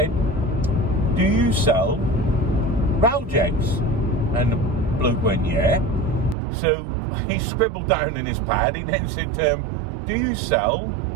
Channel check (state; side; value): drops out; left; at 6.4 s